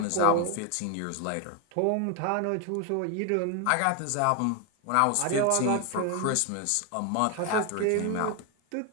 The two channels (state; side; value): different; both; correlation 0.01